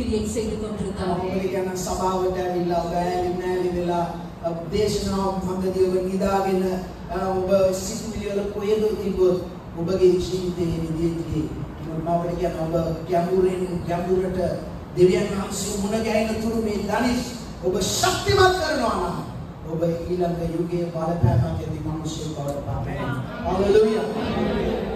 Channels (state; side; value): identical; both; correlation 1.00